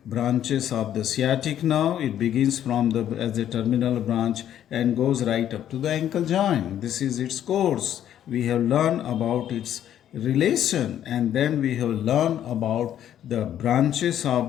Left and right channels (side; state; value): right; quieter; 10.8 dB